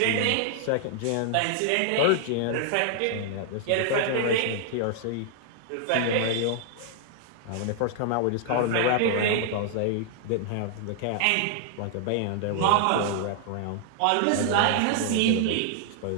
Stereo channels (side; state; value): both; different; correlation 0.00